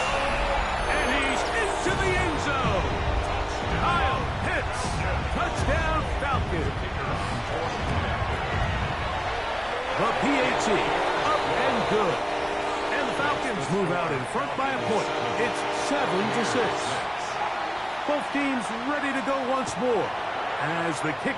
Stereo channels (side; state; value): both; identical; correlation 1.00